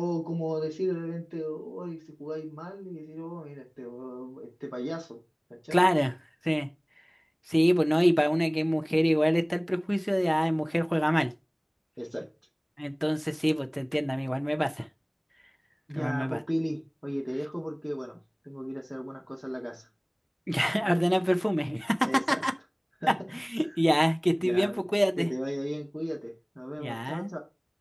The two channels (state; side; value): identical; both; correlation 1.00